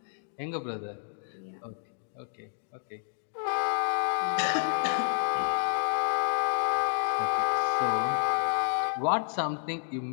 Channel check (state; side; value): silent; right; digital silence